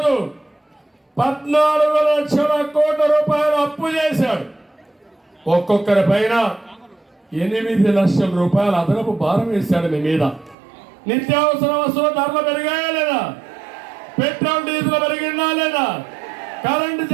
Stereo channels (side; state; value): left; drops out; at 10.6 s